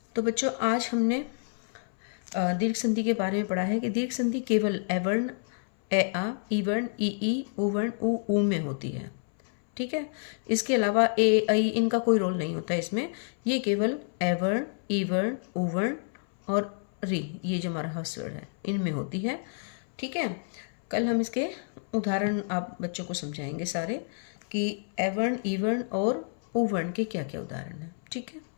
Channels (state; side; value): silent; right; 59 dB below the other